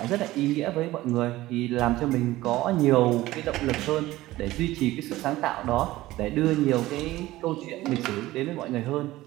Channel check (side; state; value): left; quieter; 17.0 dB